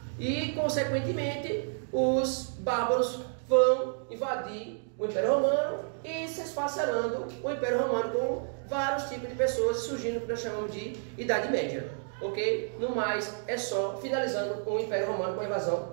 E, consequentemente, os bárbaros vão invadir o Império Romano e se esfacelando o Império Romano com vários tipos de pessoas surgindo o que nós chamamos de Idade Média. Ok? No mais, é só finalizando o Império Romano com a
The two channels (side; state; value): left; silent; digital silence